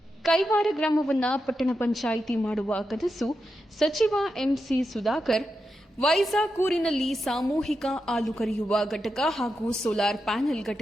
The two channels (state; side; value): normal; both; correlation 0.87